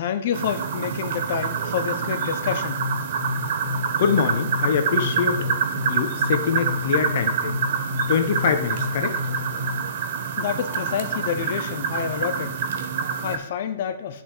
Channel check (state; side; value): inverted; both; correlation -0.47